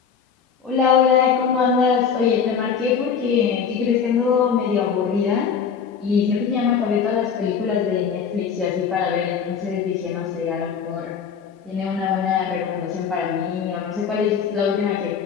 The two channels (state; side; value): quieter; right; 6.9 dB